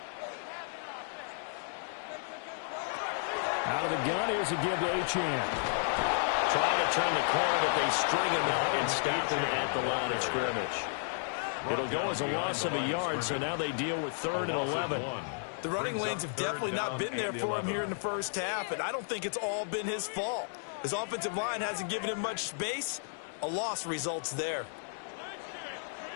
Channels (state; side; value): silent; right; digital silence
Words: Out of the gun, here's a give to Achane. Trying to turn the corner, but they string him out and stop him at the line of scrimmage. It'll go as a loss of a yard, so now they deal with 3rd and 11. The running lanes have definitely not been there for him here in the first half, and I don't think it's all been his fault. His offensive line hasn't given him much space. A loss results there.